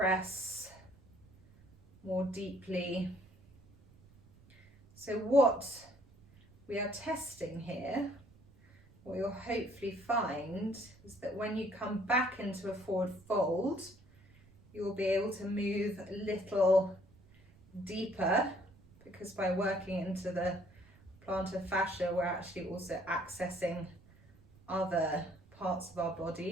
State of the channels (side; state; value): right; noise; rumble, 26 dB below the sound